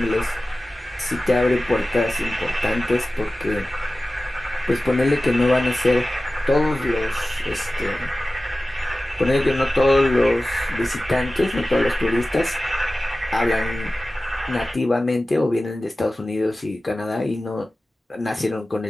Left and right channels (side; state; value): both; normal; correlation 0.96